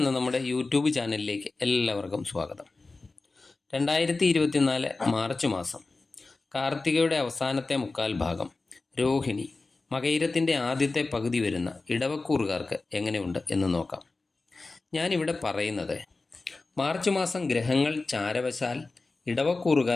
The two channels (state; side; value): quieter; right; 3.6 dB